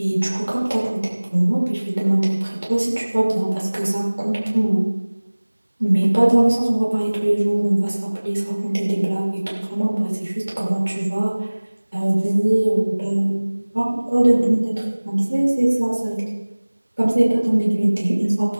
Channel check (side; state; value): both; inverted; correlation -1.00